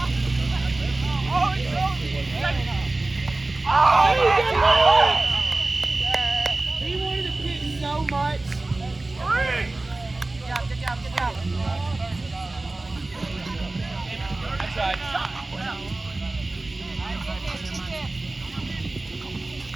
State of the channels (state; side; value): quieter; left; 3.0 dB